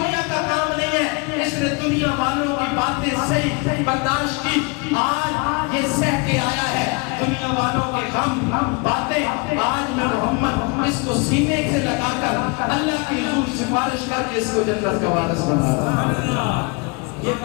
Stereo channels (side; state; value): right; quieter; 29.8 dB